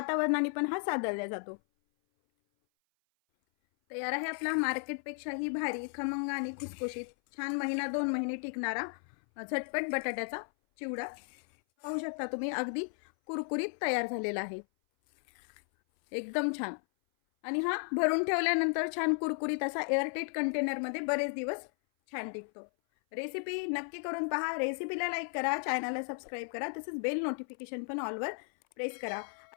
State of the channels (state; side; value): silent; right; 55 dB below the other